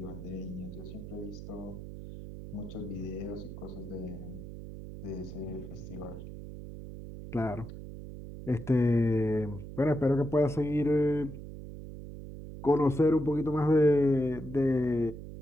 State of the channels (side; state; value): right; noise; hum, 11 dB below the sound